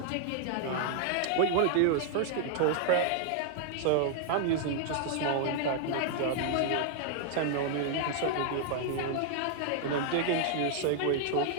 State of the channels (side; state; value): both; different; correlation -0.01